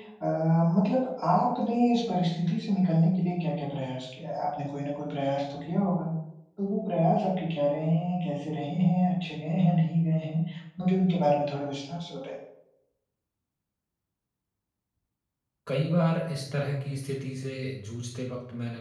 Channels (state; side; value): identical; both; correlation 1.00